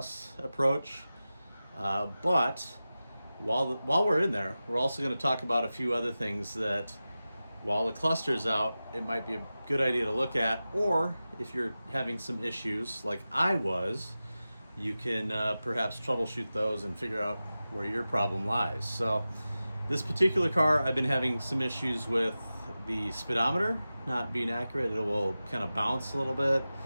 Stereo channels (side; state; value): both; inverted; correlation -0.95